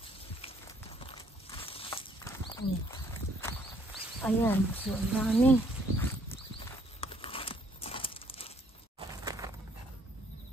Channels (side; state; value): both; normal; correlation 0.65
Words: Ayan. So ang dami.